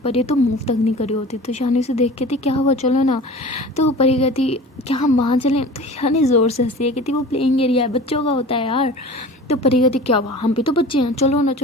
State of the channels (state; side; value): normal; both; correlation 0.39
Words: ये तो मूव तक नहीं करी होती। तो शानी से देख के थी क्या हुआ चलो ना। तो परी कहती क्या हम वहाँ चलें? तो शानी ज़ोर से हंसी है, कहती वो प्लेइंग एरिया है, बच्चों का होता है यार। तो परी कहती क्या हुआ हम भी तो बच्चे हैं, चलो ना